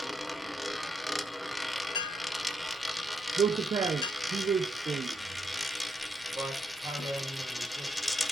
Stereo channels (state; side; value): normal; both; correlation 0.80